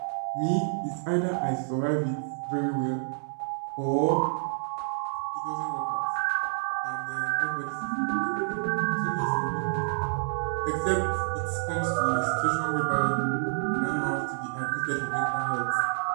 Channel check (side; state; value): left; silent; 59 dB below the other